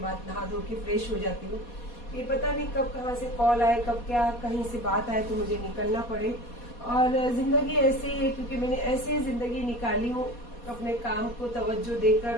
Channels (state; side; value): late; right; 4.2 ms